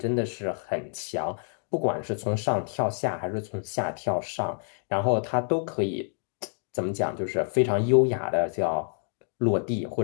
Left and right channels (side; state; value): right; silent; 58 dB below the other